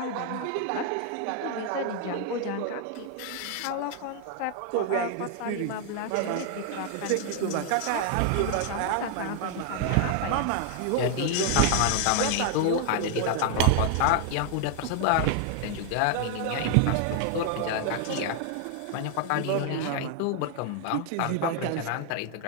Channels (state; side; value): different; both; correlation 0.00